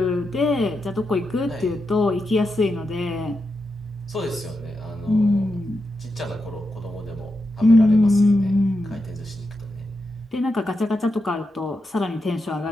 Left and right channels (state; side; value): normal; both; correlation 0.87